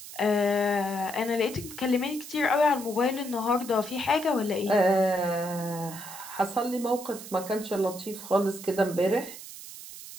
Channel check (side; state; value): right; noise; hiss, 13 dB below the sound